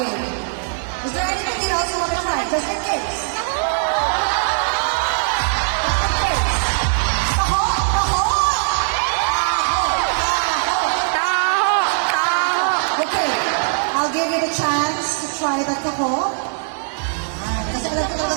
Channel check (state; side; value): silent; left; 65 dB below the other